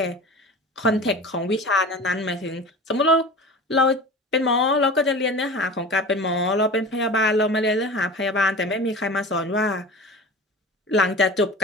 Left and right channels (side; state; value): both; normal; correlation 0.36